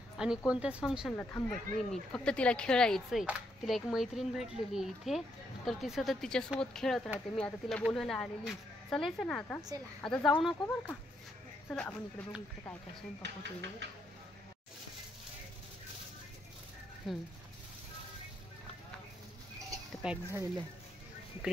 आणि कोणत्याच फंक्शनला थांबत नाही मी. फक्त तिला खेळायचंय. तिला एक मैत्रीण भेटलेली आहे इथे, तर ती सतत तिच्यासोबत खेळत राहते. मी आता तिला बोलवायला आलेली. चालायचं ना आता? आता जाऊ नको बरं का. चला आपण इकडे बघू, इकडे काय काय स्वयंपाक होतोय बघू. ते पॅक झालेलं आहे.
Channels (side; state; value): both; normal; correlation 0.76